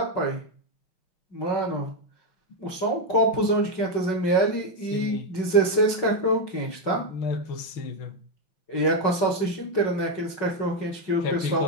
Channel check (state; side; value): late; right; 5.4 ms